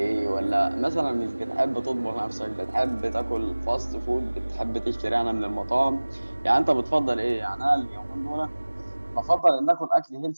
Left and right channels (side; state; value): both; inverted; correlation -1.00